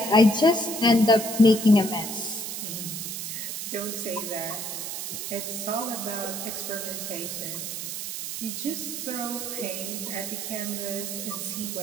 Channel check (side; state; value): right; noise; hiss, 5 dB below the sound